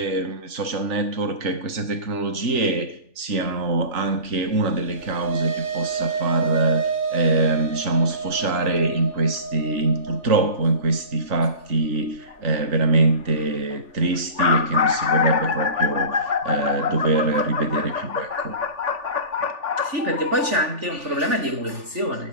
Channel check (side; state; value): left; late; 3.4 ms